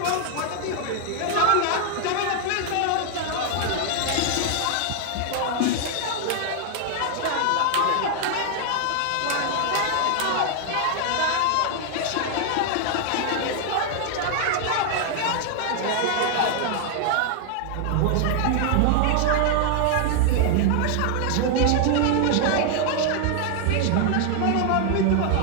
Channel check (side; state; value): both; different; correlation 0.00